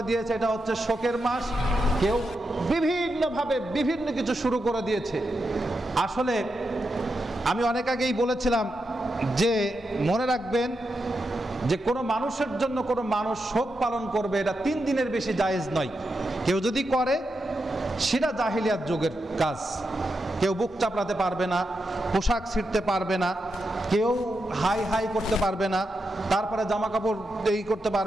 দিয়েছে এটা হচ্ছে শোকের মাস, কেউ বিভিন্নভাবে বিভিন্ন কিছু শুরু করে দিয়েছে। আসলে আমি অনেক আগেই বলেছিলাম যে মনে রাখবেন যে কোনো মানুষের জন্য কোনো মানুষ শোক পালন করবে এটা 3 দিনের বেশি জায়েজ নয়। কেউ যদি করে সেটা জাহিলিয়াত যুগের কাজ। কেউ বুক চাপড়াতে পারবে না, পোশাক ছিঁড়তে পারবে না, কেউ হাই হাই করতে পারবে না, তারপরে জামা কাপড় এই করতে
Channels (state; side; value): normal; both; correlation 0.86